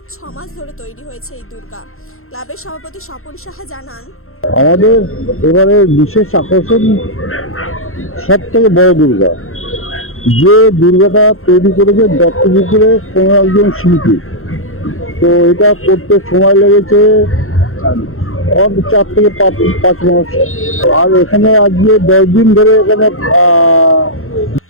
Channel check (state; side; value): late; right; 0.62 ms